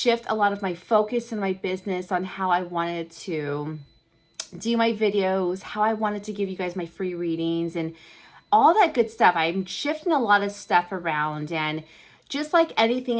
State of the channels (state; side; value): identical; both; correlation 1.00